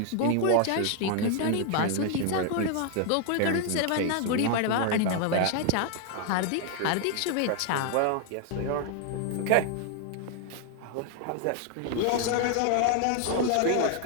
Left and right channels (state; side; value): different; both; correlation 0.00